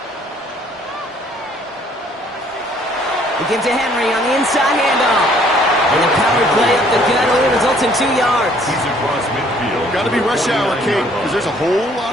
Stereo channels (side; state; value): both; normal; correlation 0.61